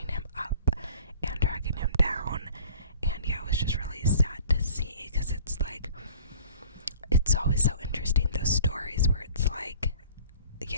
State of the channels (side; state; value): both; inverted; correlation -0.48